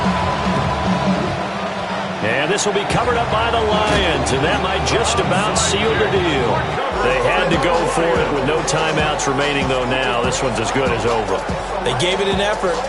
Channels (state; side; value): identical; both; correlation 1.00